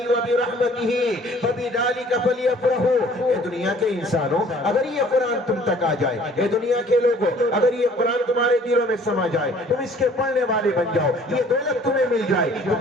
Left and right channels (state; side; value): normal; both; correlation 0.54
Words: وبرحمتہ فبذلک فلیفرحوا، اے دنیا کے انسانوں اگر یہ قرآن تم تک آ جائے، اے دنیا کے لوگوں اگر یہ قرآن تمہارے دلوں میں سما جائے، تم اس کے پڑھنے والے بن جاؤ، یہ دولت تمہیں مل جائے، تو